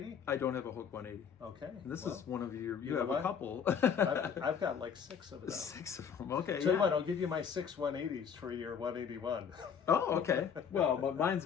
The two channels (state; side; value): quieter; right; 7.3 dB